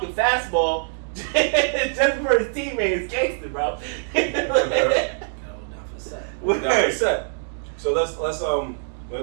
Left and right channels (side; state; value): left; silent; digital silence